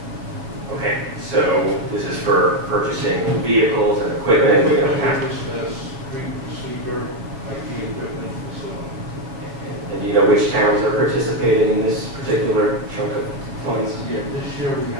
Okay, so this is for purchasing vehicles and equipment. You know, Street sweeper, IT equipment, and so on. and do you know which towns are participating in this particular chunk of funds? Yeah, this year we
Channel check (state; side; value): late; left; 7.5 ms